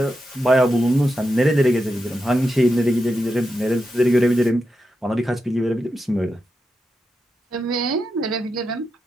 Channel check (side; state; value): both; normal; correlation 0.87